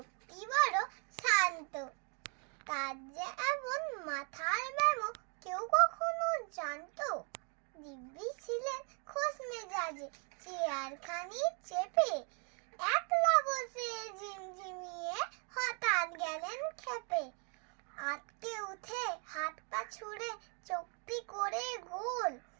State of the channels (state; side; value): quieter; left; 37.4 dB